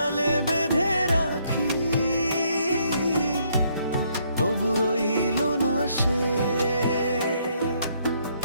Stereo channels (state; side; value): inverted; both; correlation -0.70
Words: বেঁধে রাখি, তবু রইল না সে।